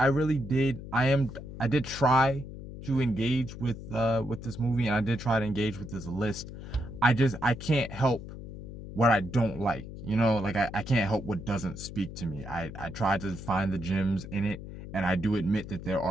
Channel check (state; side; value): noise; left; hum, 11 dB below the sound